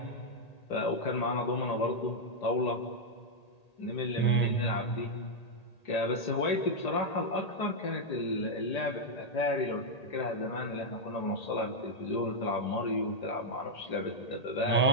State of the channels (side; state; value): right; late; 1.8 ms